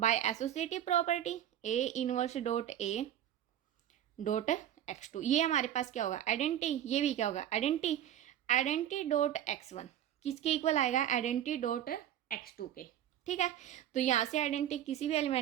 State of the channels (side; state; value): left; quieter; 11.1 dB